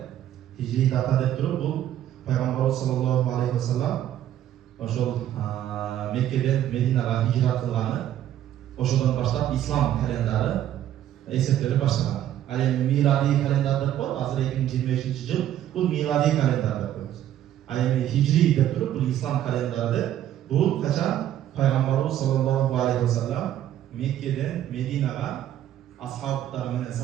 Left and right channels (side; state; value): left; quieter; 11.8 dB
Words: Hicri data dep turup bu Peygamberimiz sallallahu aleyhi ve sellem oşol Mekke'den Medine'ye hicrat kılgаны, oşodan başlap İslam kalenderi esirtleri başlagan. Al miladi kalender dep koyup, hazır 2025 yıl bu miladi kalender dep koyuyoruz. Al Hicri dep turup bu İslam kalenderi bu kaçan Peygamberimiz sallallahu aleyhi ve sellem Mekke'den Medine'ye ashablar menen,